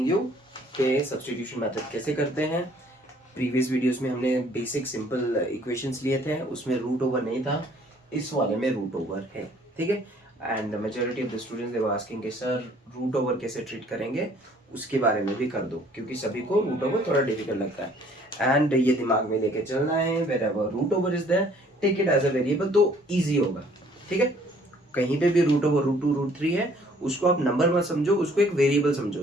you कि substitution method कैसे करते हैं. Previous videos में हमने बेसिक सिंपल इक्वेशंस लिए थे, उसमें रूट ओवर नहीं था, इस वाले में रूट ओवर है. ठीक है. And majority of the students they were asking कि सर रूट ओवर कैसे ट्रीट करेंगे, उसके बारे में भी कर दो, क्योंकि सभी को रूट ओवर थोड़ा डिफिकल्ट लगता है. एंड ये दिमाग में लेके चलना है, wherever root over is there take it as a variable, तो ईजी होगा. ठीक है. कहीं पे भी रूट ओवर रूट 2 रूट 3 है, उसको आप नंबर मत समझो, उसको एक वेरिएबल समझो,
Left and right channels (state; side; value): normal; both; correlation 0.58